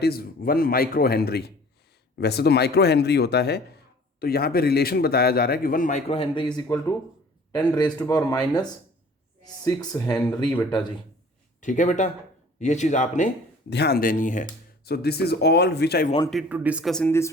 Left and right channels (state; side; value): normal; both; correlation 0.49